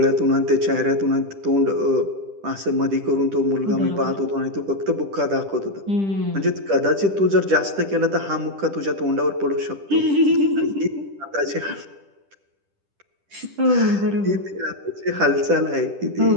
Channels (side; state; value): left; late; 10 ms